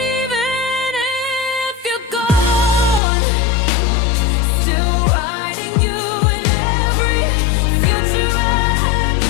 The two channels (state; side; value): drops out; right; at 3.0 s